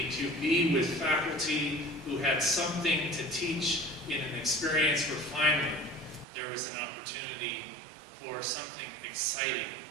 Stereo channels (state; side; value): drops out; left; at 6.2 s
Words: to be with faculty who had something to teach in an experience where finally there was an opportunity for something exciting